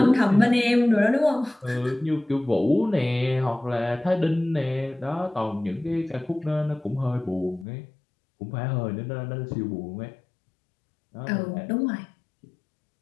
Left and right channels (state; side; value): drops out; right; at 7.7 s